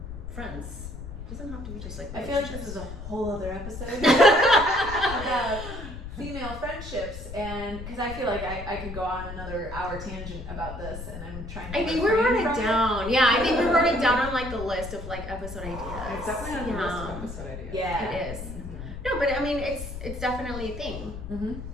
friends. It doesn't have to be just like I feel like this is a whole other episode about female friendships, and because I feel like I could go on another hour tangent about this, and I'm trying to. I think we wrote it down. Yeah, I think we wrote it down on like the list of like episode ideas. It's definitely on the list of episode ideas. Yeah, It is. No, but I mean, it's definitely a thing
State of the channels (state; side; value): noise; left; rumble, 9 dB below the sound